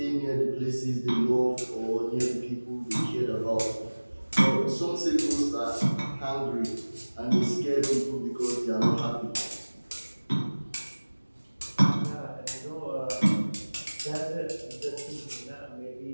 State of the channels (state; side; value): inverted; both; correlation -1.00